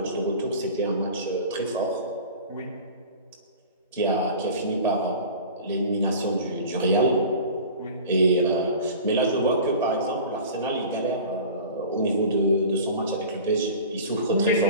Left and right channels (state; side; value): inverted; both; correlation -0.39